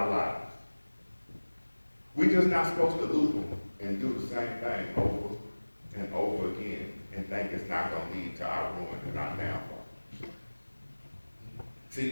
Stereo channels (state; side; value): inverted; both; correlation -1.00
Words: lives. We're just not supposed to loop them and do the same thing over and over again and think it's not going to lead to our ruin and our downfall.